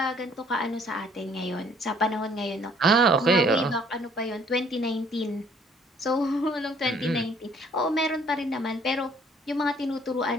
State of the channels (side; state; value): both; normal; correlation 0.60